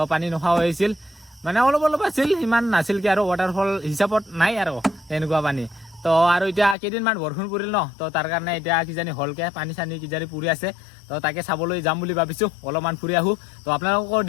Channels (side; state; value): right; drops out; at 6.8 s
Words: পানী নোখোৱা হৈছিল মানে অলপ আছিল ইমান নাছিল কি আৰু ৱাটাৰফল হিচাপত নাই আৰু এনেকুৱা পানী তো আৰু এতিয়া কেইদিনমান বৰষুণ পৰিল ন তো তাৰ কাৰণে এতিয়া কিজানি হলকে পানী চানী কিজানি পৰি আছে তো তাকে চাবলৈ যাম বুলি ভাবিছো অলপমান ফুৰি আহো তো আপোনালোকক